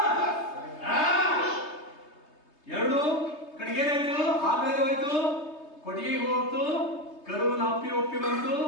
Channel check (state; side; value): late; right; 3.3 ms